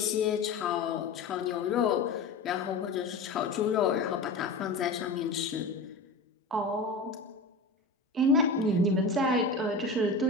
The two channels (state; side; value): quieter; right; 3.4 dB